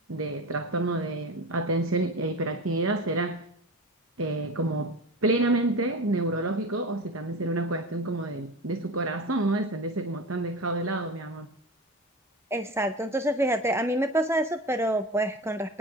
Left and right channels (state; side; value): normal; both; correlation 0.29